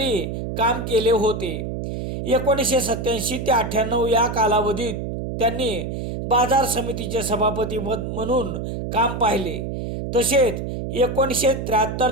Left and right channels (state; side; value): noise; right; hum, 4 dB below the sound